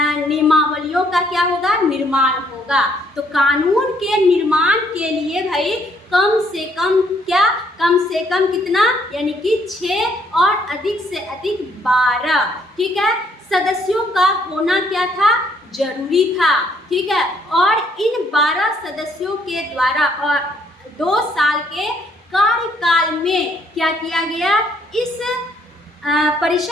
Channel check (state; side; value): normal; both; correlation 0.67